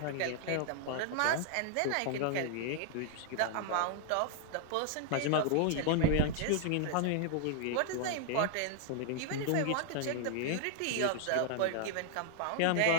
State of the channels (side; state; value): both; different; correlation 0.00